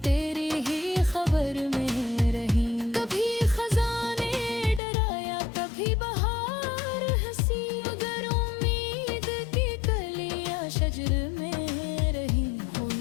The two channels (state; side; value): drops out; right; at 4.8 s